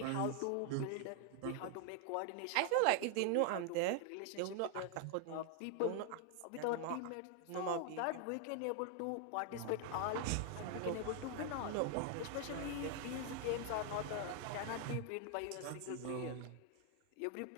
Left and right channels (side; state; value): both; different; correlation 0.00